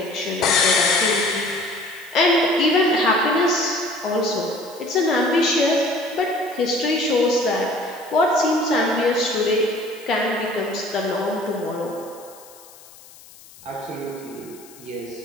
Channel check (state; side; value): noise; left; hiss, 22 dB below the sound